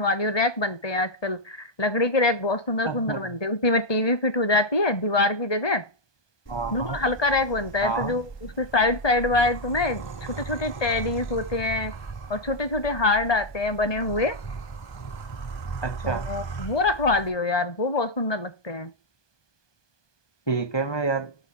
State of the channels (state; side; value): late; right; 1.2 ms